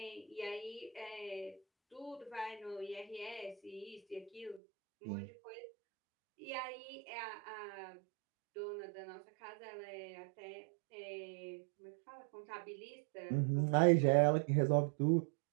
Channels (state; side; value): drops out; left; at 4.6 s